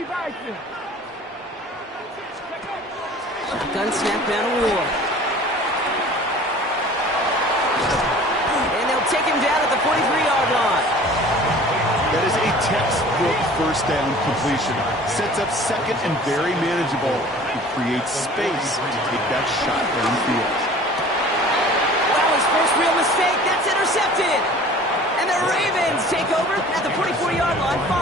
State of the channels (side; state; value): both; normal; correlation 0.46